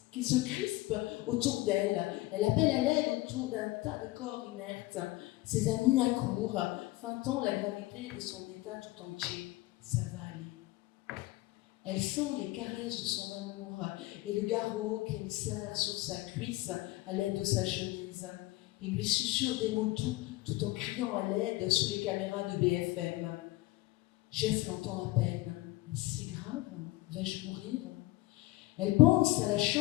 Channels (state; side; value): quieter; right; 19.3 dB